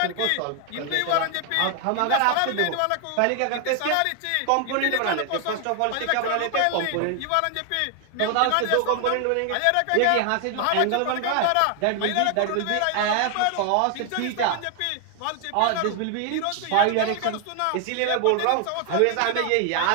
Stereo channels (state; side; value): different; both; correlation 0.00